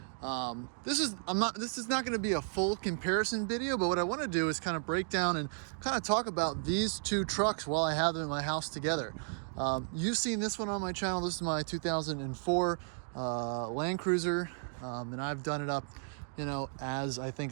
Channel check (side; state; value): left; silent; 55 dB below the other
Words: This is not going to be a full comparison video, but what I want to do is kind of break down and kind of talk about these two trucks while I have them in my house together. You've seen this one on my channel. This is my 2004 Land Cruiser, and I've done it up, as I